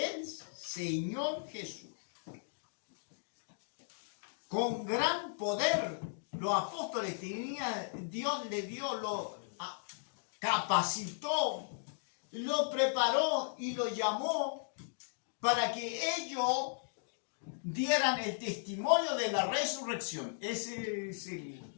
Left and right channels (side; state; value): right; silent; digital silence